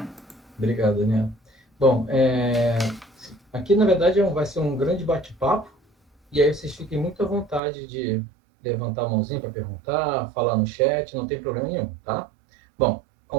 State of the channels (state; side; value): drops out; left; at 7.6 s